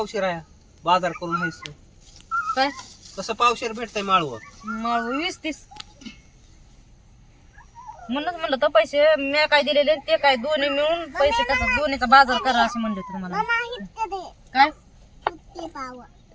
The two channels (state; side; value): identical; both; correlation 1.00